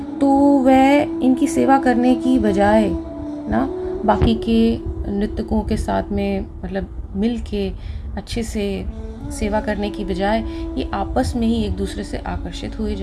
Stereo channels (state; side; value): identical; both; correlation 1.00